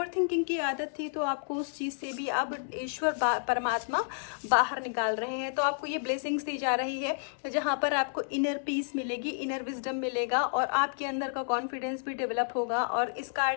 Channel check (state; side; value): silent; right; digital silence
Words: थिंकिंग की आदत थी, तो आपको उस चीज़ से भी अब ईश्वर परमात्मा बाहर निकाल रहे हैं। तो आपको ये ब्लेसिंग्स दी जा रही है, जहाँ पर आपको इनर पीस मिलेगी, इनर विजडम मिलेगा, और आपके अंदर का कॉन्फिडेंस भी डेवलप होगा। और इस